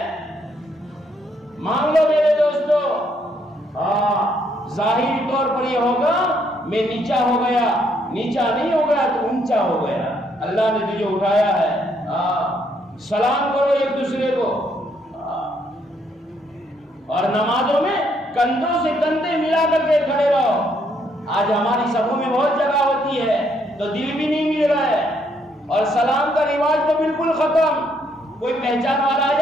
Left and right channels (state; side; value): normal; both; correlation 0.71